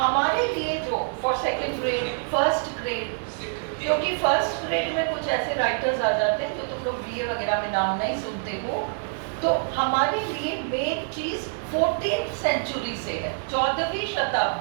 लिए जो for second grade, first grade, क्योंकि फर्स्ट ग्रेड में कुछ ऐसे राइटर्स आ जाते हैं जो तुम लोग BA वगैरह में नाम नहीं सुनते हो, तो हमारे लिए मेन चीज 14th सेंचुरी से है, 14वीं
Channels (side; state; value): left; silent; digital silence